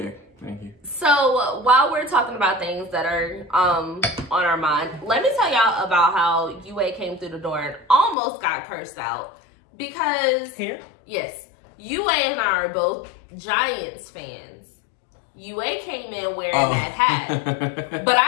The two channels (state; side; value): drops out; right; at 8.2 s